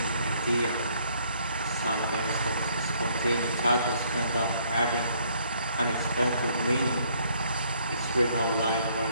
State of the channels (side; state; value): both; inverted; correlation -0.66